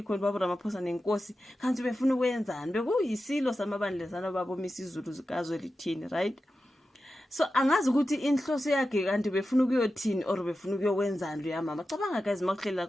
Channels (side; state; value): both; normal; correlation 0.92